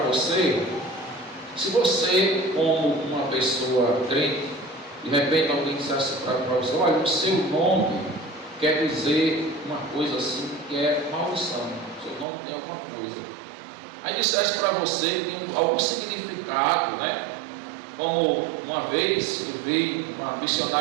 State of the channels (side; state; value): left; drops out; at 12.2 s